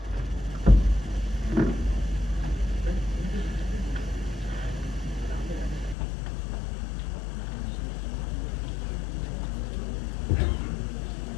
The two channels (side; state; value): right; drops out; at 6.0 s